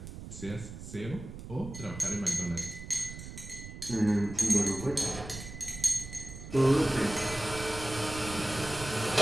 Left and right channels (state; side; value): noise; right; rumble, 11 dB below the sound